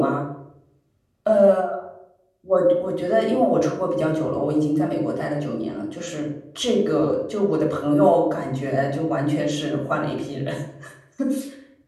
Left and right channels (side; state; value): both; identical; correlation 1.00